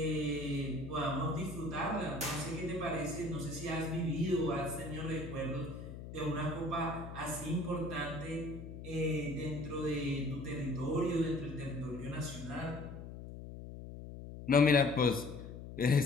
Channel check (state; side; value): noise; left; hum, 11 dB below the sound